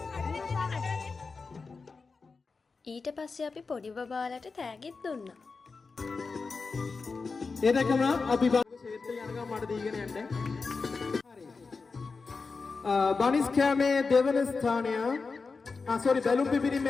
ඊට පස්සේ අපි පොඩි බබාලට තෑගිත් දුන්නා. ඒ දැකම අපි ශේත්‍රය යනකම් මට දීගෙන යන්න. හරි. බනිස් කෑමේ දෙවන ස්ථානය බැලුම්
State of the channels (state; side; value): quieter; right; 4.4 dB